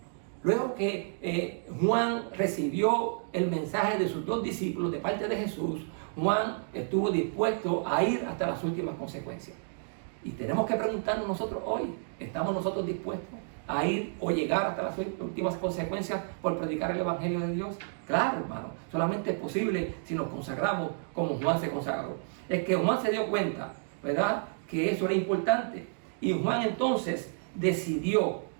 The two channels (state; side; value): silent; left; digital silence